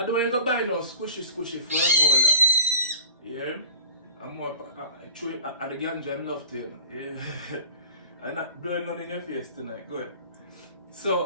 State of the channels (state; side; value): inverted; both; correlation -0.44